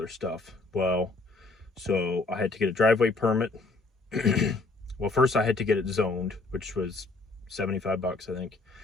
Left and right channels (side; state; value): right; quieter; 3.5 dB